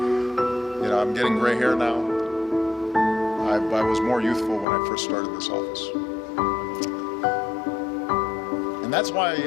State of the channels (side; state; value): right; drops out; at 4.7 s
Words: You know, I'm getting gray hair now. I was more youthful when I first started this office. And that's why